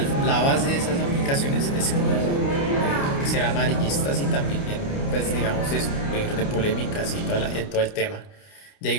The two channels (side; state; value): right; late; 29 ms